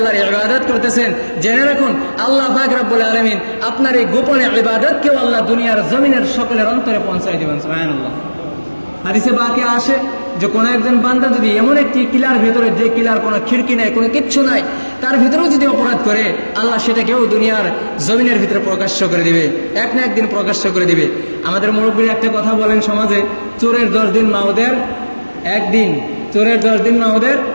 ইবাদত করতেছেন, জেনে রাখুন আল্লাহ পাক রব্বুল আলামিন আপনার এই গোপন ইবাদতকেও আল্লাহ দুনিয়ার জমিনের সকলের অন্তরে পৌঁছায় দিবেন। সুবহানাল্লাহ। হাদিসে বাকি আসে যে কোনো একজন বান্দা যদি এমন একটি কিলার ভেতরে, যে কিলার কোনো খিড়কি নাই, কোনো কিচ্ছু নাই, তার ভিতরেও যদি অপরাধ করে, আল্লাহ সেটাকেও দুনিয়ার জমিনের ভিতরে প্রকাশ্য করে দিবে, এক না একদিন প্রকাশ্য করে দিবে। আমাদের মুরব্বীরা একটা কথা বলেন সমাজে, চোরের 10 দিন মাওদের একদিন, চোরের 10 দিন মাওদের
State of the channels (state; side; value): inverted; both; correlation -1.00